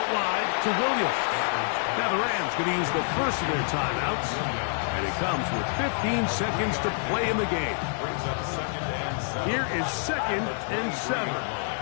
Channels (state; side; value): silent; right; digital silence